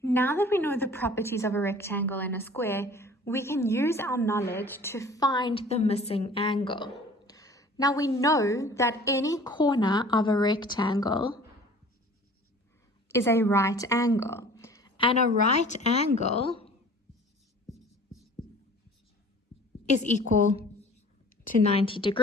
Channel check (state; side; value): normal; both; correlation 0.47